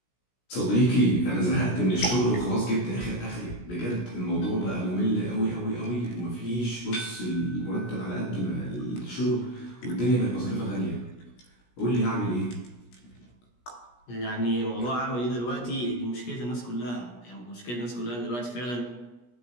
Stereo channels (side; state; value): right; late; 17 ms